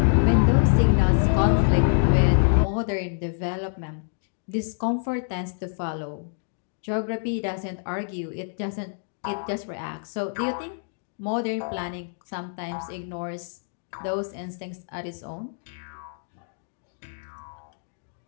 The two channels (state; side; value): silent; right; digital silence